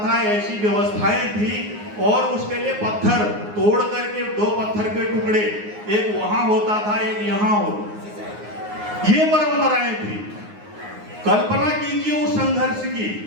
ऐसी व्यवस्थाएं थी। और उसके लिए पत्थर तोड़ करके 2 पत्थर के टुकड़े, एक वहां होता था, एक यहाँ होता। ये परंपराएं थी। कल्पना कीजिए उस संघर्ष की,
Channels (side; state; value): left; late; 9.6 ms